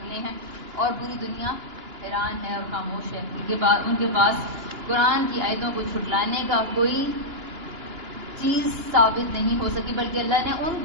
ہیں اور پوری دنیا حیران ہے اور خاموش ہے. ان کے پاس قرآن کی آیتوں کو جھٹلانے کا کوئی چیز ثابت نہیں ہو سکی، بلکہ اللہ نے ان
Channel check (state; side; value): late; left; 2.9 ms